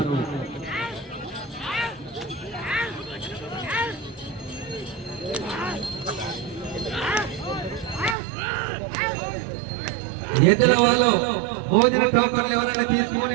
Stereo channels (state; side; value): drops out; left; at 8.2 s